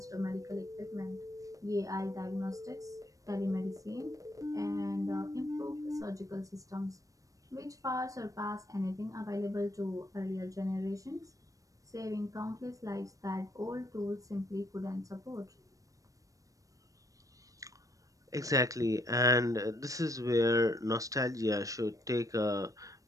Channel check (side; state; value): left; late; 0.16 ms